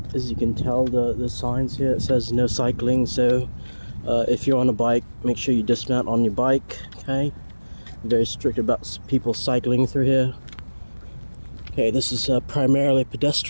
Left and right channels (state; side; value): inverted; both; correlation -1.00